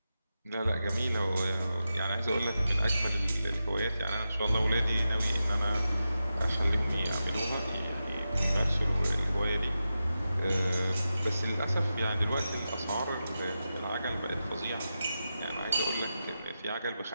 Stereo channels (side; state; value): both; inverted; correlation -0.90